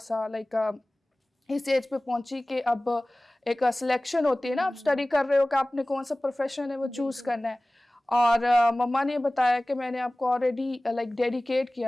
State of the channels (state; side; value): normal; both; correlation 0.98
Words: لائک اس ایج پہ پہنچی کہ اب ایک سلیکشن ہوتی ہے نا, آپ اسٹڈی کر رہے ہو کہ آپ نے کون سا پروفیشن ہے وہ چوز کرنا ہے. اور مما نے بتایا کہ میں نے آپ کو آلریڈی لائک ڈیڈیکیٹ